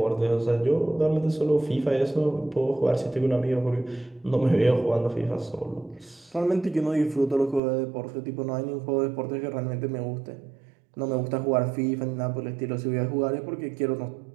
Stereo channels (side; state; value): left; drops out; at 7.6 s